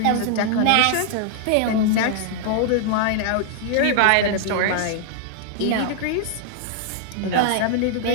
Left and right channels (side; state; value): both; different; correlation -0.01